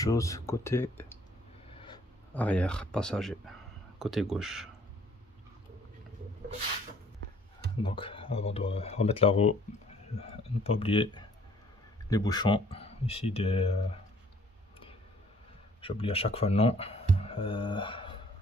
côté arrière passager, côté gauche. Donc avant de remettre la roue, ne pas oublier les bouchons ici j'oublie à chaque fois le nom,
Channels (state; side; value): normal; both; correlation 0.59